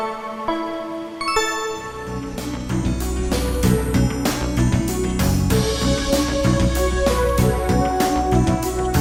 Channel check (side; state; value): both; identical; correlation 1.00